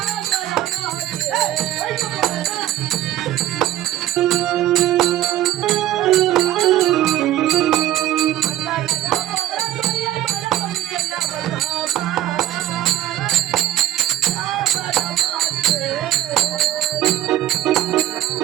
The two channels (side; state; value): left; quieter; 13.2 dB